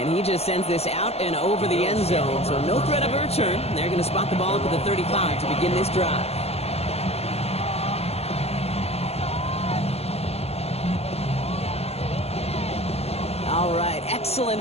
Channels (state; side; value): late; right; 0.30 ms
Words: he just sends this out and over the end zone, so no threat of a return. They're going to spot the ball up at the 35 to begin this drive. All right,